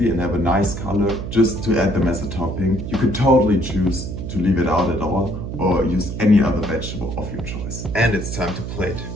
and have a nice color, just to add them as a topping. You could totally choose to leave it out at all or use any other vegetable of your choice. And it's time to plate.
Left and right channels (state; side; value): noise; right; hum, 6 dB below the sound